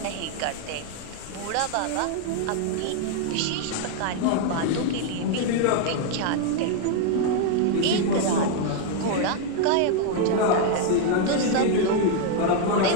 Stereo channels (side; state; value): both; different; correlation 0.00